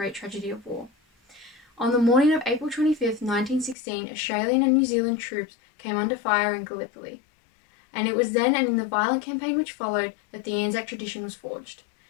tragedy of war. On the morning of April 25th, 1916, Australian and New Zealand troops came under fire in Gallipoli. And it was then and in the violent campaign which followed that the Anzac tradition was forged.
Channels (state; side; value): drops out; right; at 3.8 s